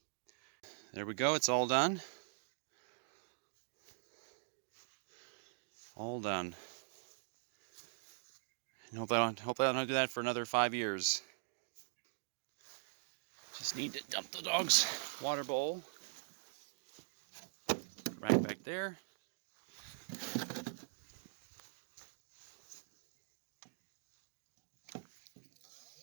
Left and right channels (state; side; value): silent; left; digital silence